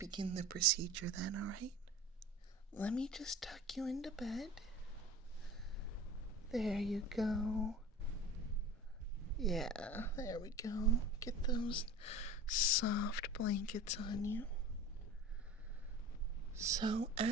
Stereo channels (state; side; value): normal; both; correlation 0.37